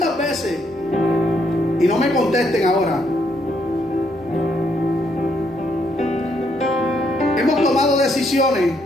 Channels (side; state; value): both; normal; correlation 0.73